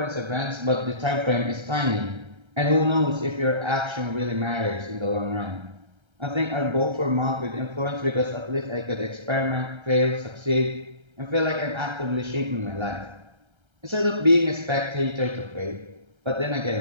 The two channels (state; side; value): late; left; 1.3 ms